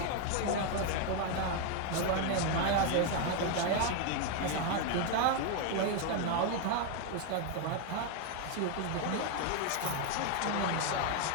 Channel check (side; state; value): both; different; correlation 0.01